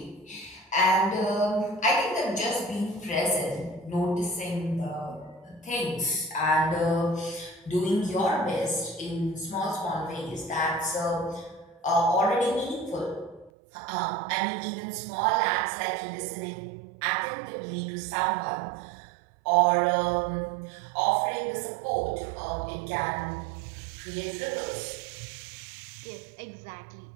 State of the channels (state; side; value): drops out; left; at 13.5 s